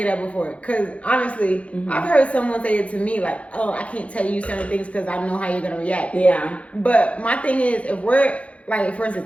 that before. Cause honestly, I've heard someone say it to me like, oh, I can't tell you certain things because I know how you're gonna react. Yeah. But my thing is, if we're like, for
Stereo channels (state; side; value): late; right; 0.063 ms